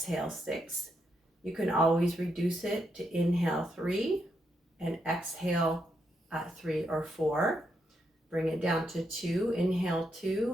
6. You can always reduce it to inhale 3 and exhale 3 or 4. Bring it down to 2, inhale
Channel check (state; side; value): normal; both; correlation 0.80